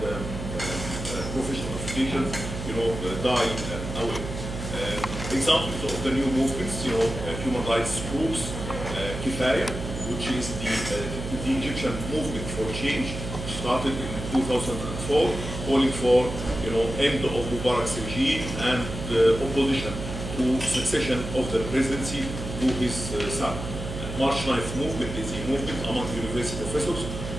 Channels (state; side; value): noise; right; hum, 6 dB below the sound